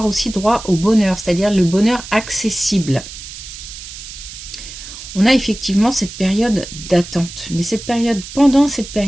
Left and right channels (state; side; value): noise; right; hiss, 13 dB below the sound